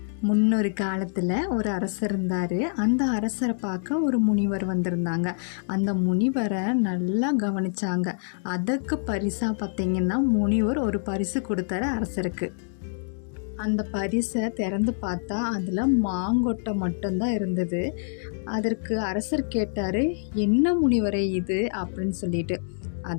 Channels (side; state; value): right; silent; digital silence